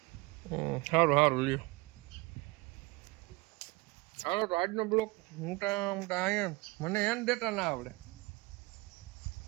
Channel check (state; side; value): quieter; left; 24.3 dB